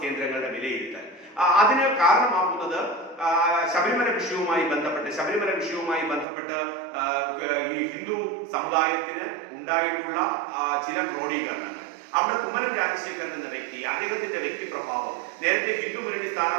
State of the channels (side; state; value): left; drops out; at 6.2 s